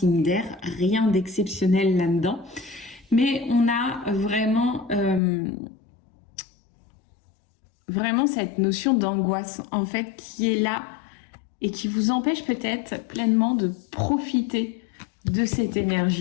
d'air, rien d'exceptionnel là-dedans. Mais on a vraiment cette notion d'angoisse en fait qui est là et qui vous empêche peut-être pleinement de profiter de cette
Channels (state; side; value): drops out; right; at 5.2 s